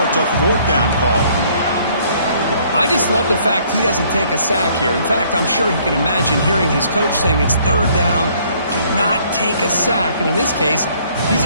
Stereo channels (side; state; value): both; inverted; correlation -0.62